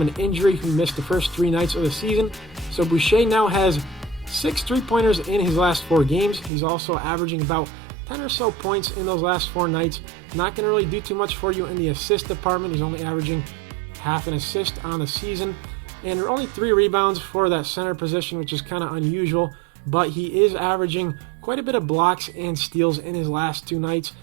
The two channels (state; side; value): drops out; left; at 6.5 s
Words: injury. He missed the first 3 nights of the season. So Boucher now has 6 3-pointers in his last 4 games. He's also averaging about 10 or so points in those last 4 nights. Not going to really do too much for you in the assist department. He's only averaging half an assist on the season. And there are only 3 rebounds for that center position, which is kind of unusual. But he is averaging quite a bit of blocks and steals in his last 2 nights.